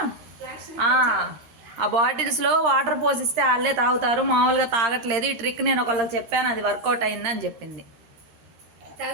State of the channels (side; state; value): left; late; 13 ms